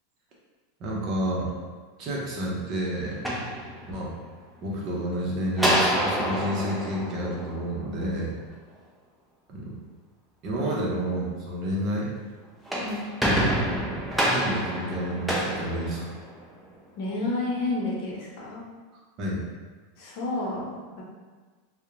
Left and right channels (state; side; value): normal; both; correlation 0.22